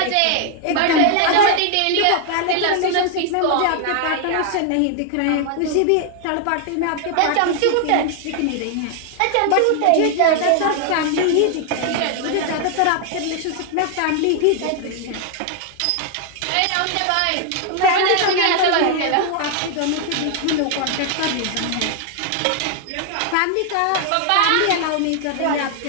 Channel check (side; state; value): both; different; correlation 0.00